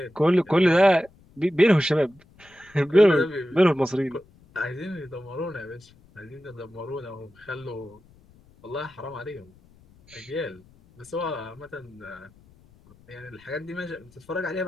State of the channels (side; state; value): left; noise; rumble, 28 dB below the sound